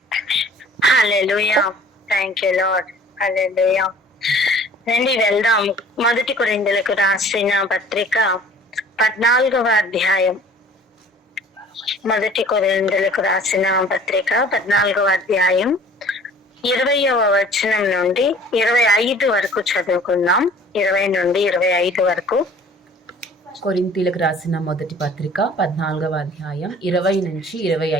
Hallelujah. Thank you, Lord. Hallelujah. రండి వెళ్దాం. 1 కొరింథీయులకు రాసిన పత్రిక 14వ అధ్యాయం. 1 కొరింథీయులకు రాసిన పత్రిక 14వ అధ్యాయం 20వ వచనం నుండి 25 వరకు చదువుకుందాం. 20 నుండి 25 వరకు. కొరింథీయులకు రాసిన మొదటి పత్రిక 14వ అధ్యాయం 20 నుంచి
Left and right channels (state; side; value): normal; both; correlation 0.49